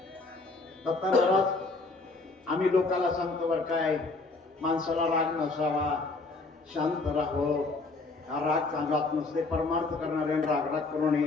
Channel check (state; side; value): quieter; right; 3.5 dB